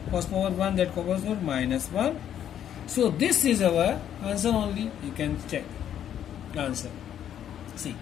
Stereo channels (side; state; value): right; quieter; 10.0 dB